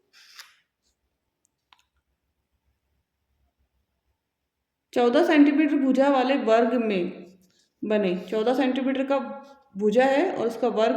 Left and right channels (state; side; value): identical; both; correlation 1.00